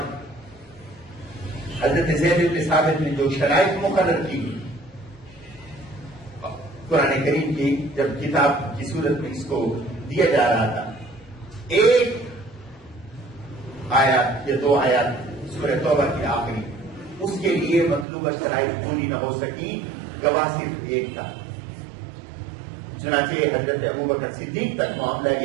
حضرت زید بن ثابت نے جو شرائط مقرر کی قرآن کریم کی, جب کتاب کی صورت میں اس کو دیا جا رہا تھا, ایک آیات یا 2 آیات سورہ توبہ کی آخری, اس کے لیے مطلوبہ شرائط پوری نہ ہو سکی, گواہ صرف ایک تھا. چنانچہ حضرت ابوبکر صدیق تک معاملہ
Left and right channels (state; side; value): drops out; left; at 18.1 s